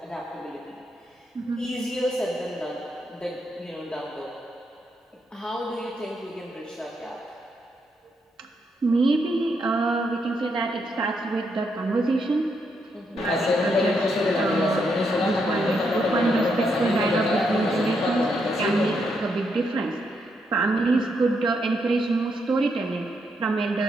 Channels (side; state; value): both; normal; correlation 0.79